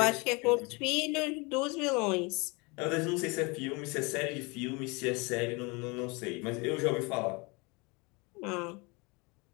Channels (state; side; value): quieter; right; 28.1 dB